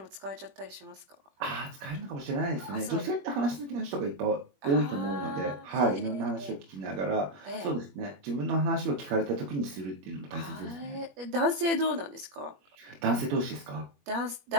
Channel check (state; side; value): late; left; 21 ms